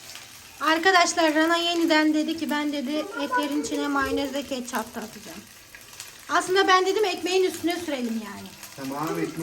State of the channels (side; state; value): both; identical; correlation 1.00